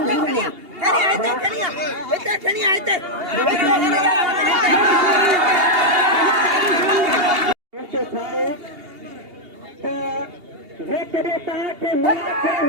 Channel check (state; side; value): late; left; 2.8 ms